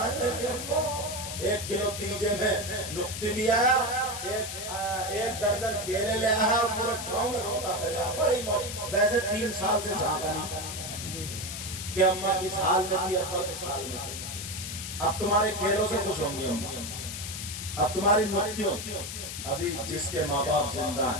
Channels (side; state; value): left; noise; hiss, 7 dB below the sound